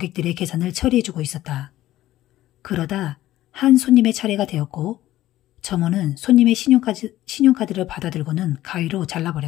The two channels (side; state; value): right; quieter; 14.7 dB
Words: 계산을 처리해주고 있었다. 그러다 한 손님의 차례가 되었고 점원은 손님의 신용카드를 받아들고는 가위로